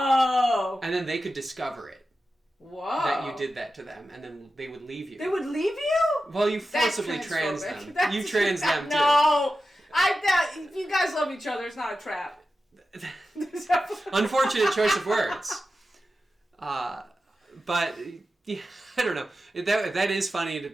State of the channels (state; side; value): normal; both; correlation 0.92